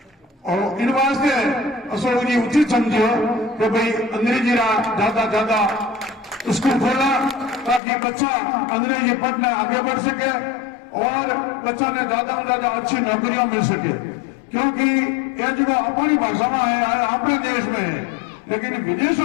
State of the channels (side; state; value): right; drops out; at 7.8 s